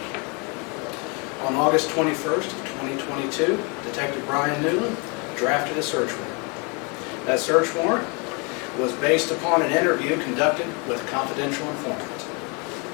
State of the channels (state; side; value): quieter; right; 32.3 dB